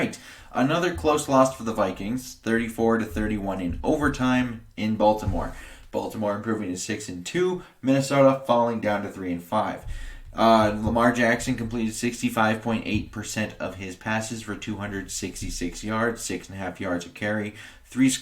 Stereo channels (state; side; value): identical; both; correlation 1.00